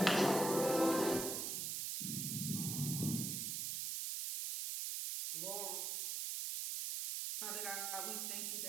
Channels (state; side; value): noise; right; hiss, 1 dB below the sound